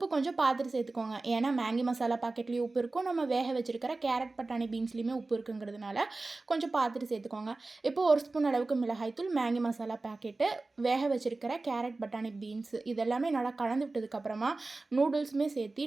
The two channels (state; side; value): quieter; left; 3.3 dB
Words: கொஞ்சம் பார்த்துட்டு சேர்த்துக்கோங்க. ஏன்னா மேங்கி மசாலா பாக்கெட்லேயும் உப்பு இருக்கும், நம்ம வேக வச்சுருக்கிற கேரட், பட்டாணி, பீன்ஸ்லேயுமே உப்பு இருக்குங்கிறதுனால கொஞ்சம் பார்த்துட்டு சேர்த்துக்கோங்க. இப்போது ஒரு ஸ்பூன் அளவுக்கு மிளகாய்த்தூள், மேங்கி மசாலா பாக்கெட்டு, வேக வச்சுருக்கிற கேரட், பட்டாணி, பீன்ஸ் இதெல்லாமே நல்லா கலந்து விட்டதுக்கப்புறமா நூடுல்ஸுமே